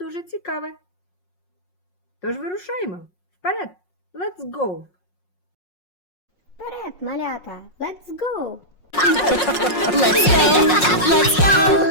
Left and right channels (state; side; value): late; right; 5.5 ms